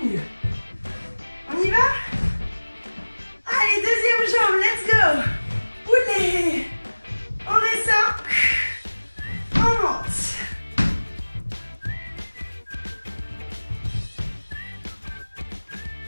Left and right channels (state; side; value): inverted; both; correlation -1.00